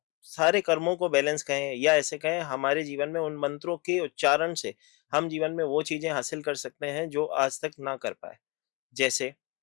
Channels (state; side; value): quieter; right; 25.8 dB